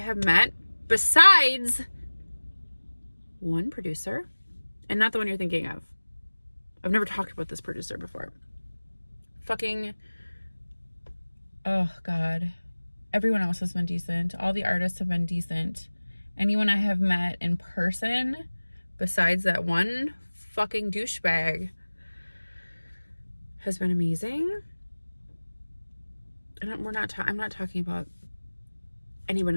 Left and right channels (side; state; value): both; inverted; correlation -1.00